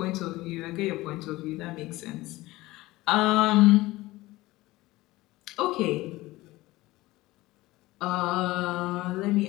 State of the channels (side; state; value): right; quieter; 18.9 dB